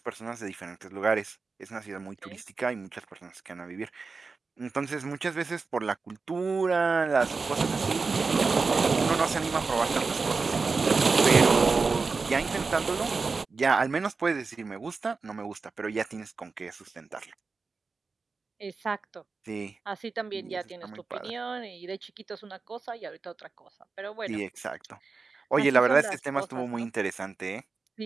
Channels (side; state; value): left; quieter; 4.4 dB